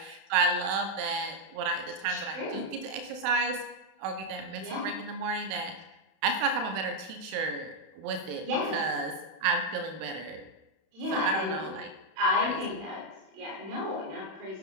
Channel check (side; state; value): left; late; 31 ms